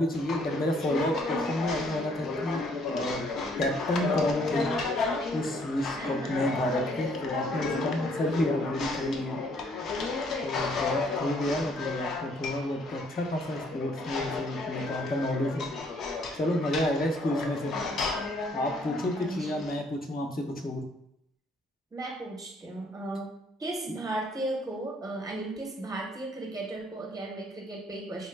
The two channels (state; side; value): normal; both; correlation 0.65